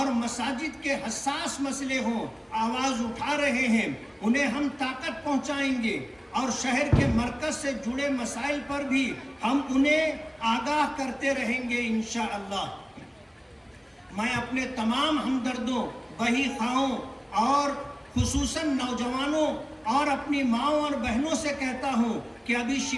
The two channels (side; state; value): both; identical; correlation 1.00